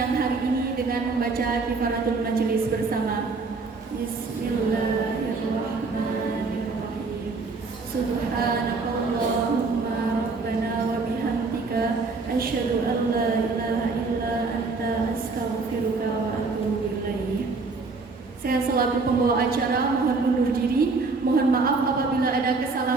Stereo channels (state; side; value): quieter; left; 4.1 dB